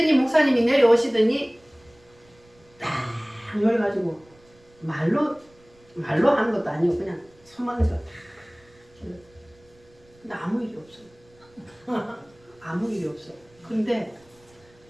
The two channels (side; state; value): right; noise; rumble, 30 dB below the sound